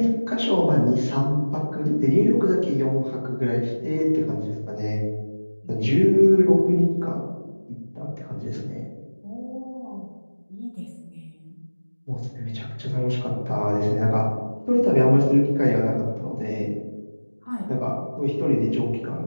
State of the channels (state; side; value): inverted; both; correlation -1.00